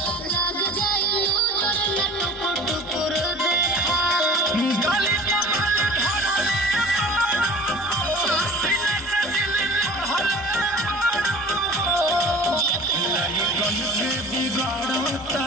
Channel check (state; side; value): normal; both; correlation 0.43